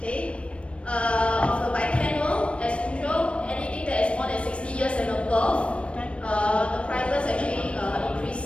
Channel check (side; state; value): right; late; 0.060 ms